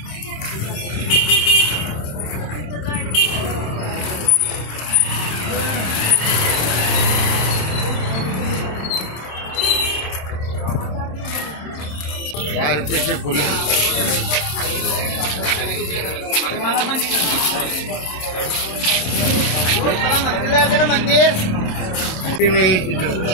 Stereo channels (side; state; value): right; late; 27 ms